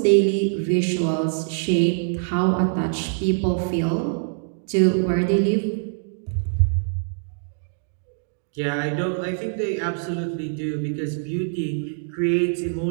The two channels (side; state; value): left; silent; digital silence